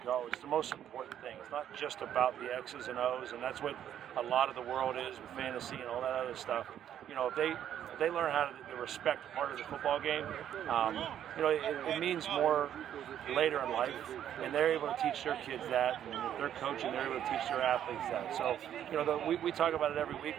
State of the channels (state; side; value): quieter; left; 10.3 dB